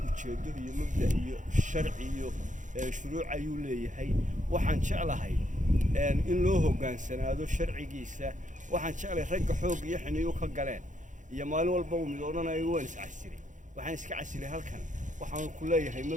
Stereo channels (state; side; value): late; left; 0.36 ms